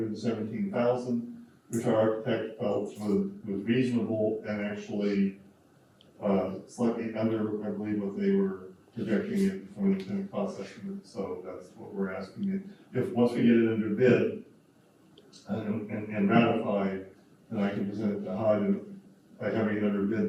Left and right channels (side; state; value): both; identical; correlation 1.00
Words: which our architect felt was reasonable and actually slightly under, I believe, what they were projecting it from the cost estimate. So that's what we're asking. If once we get it under bid and ratified, then I can present it to HUD, and by having it under